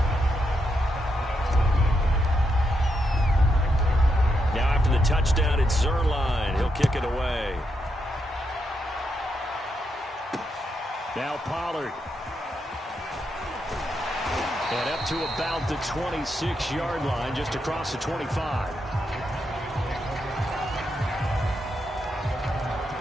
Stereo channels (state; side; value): normal; both; correlation 0.82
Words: Now after the touchdown, it's Zuerlein. He'll kick it away. Now Pollard. And up to about the 26-yard line, just across the 25.